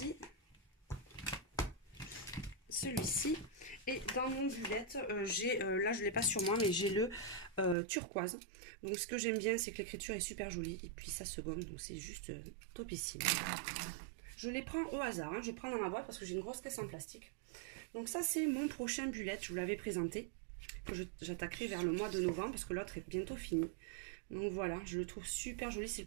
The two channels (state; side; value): drops out; left; at 7.8 s